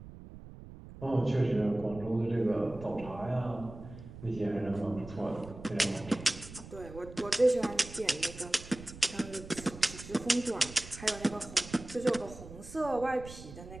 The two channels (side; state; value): right; noise; rumble, 15 dB below the sound